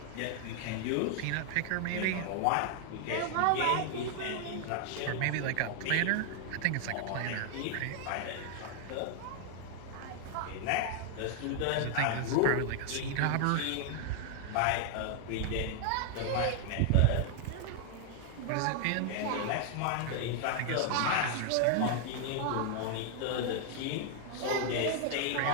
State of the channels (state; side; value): different; both; correlation 0.00